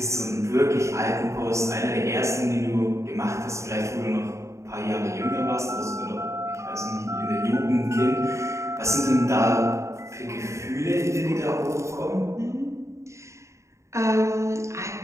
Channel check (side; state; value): left; late; 0.14 ms